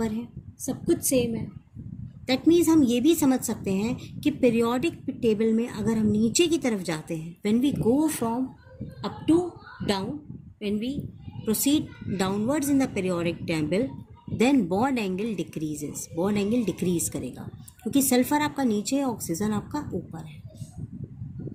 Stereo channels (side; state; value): both; identical; correlation 1.00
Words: है, सब कुछ सेम है। दैट मीन्स हम ये भी समझ सकते हैं कि पीरियोडिक टेबल में अगर हम नीचे की तरफ जाते हैं, when we go from up to down, when we proceed downwards in the periodic table, then bond angle decreases, bond angle decrease करेगा, क्योंकि सल्फर आपका नीचे है, ऑक्सीजन आपका ऊपर है,